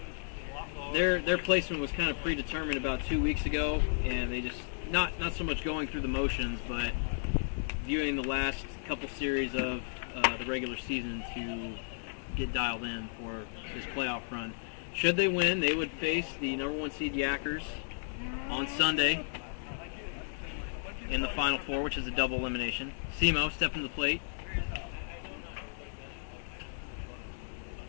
their placement was kind of predetermined about 2 weeks ago, and they just, not so much going through the motions, but viewing the last couple series of the regular season to get dialed in for this playoff run. Should they win, they would face the number 1 seed Yackers on Sunday in the Final Four, which is a double elimination. Simo stepping to the plate.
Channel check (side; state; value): right; silent; 55 dB below the other